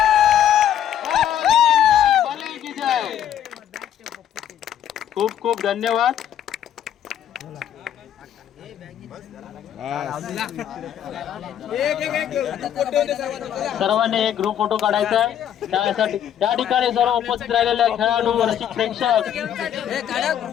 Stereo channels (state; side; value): quieter; right; 10.2 dB